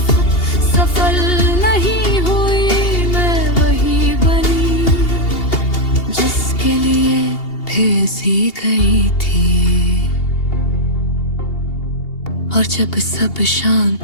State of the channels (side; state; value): right; late; 2.8 ms